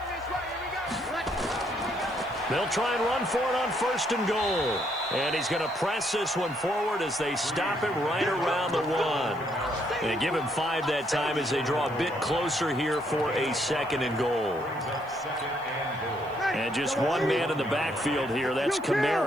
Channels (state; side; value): noise; right; hiss, 29 dB below the sound